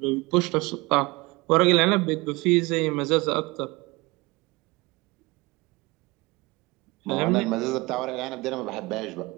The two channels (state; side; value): quieter; left; 24.0 dB